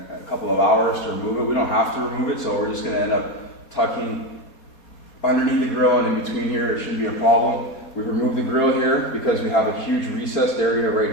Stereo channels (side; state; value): right; late; 4.2 ms